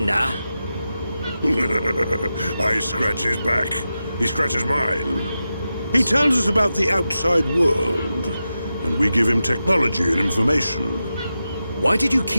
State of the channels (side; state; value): both; inverted; correlation -0.91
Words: I scratch his back. He scratches mine. He tells us about the outside world, and we give him technology and information. Why did you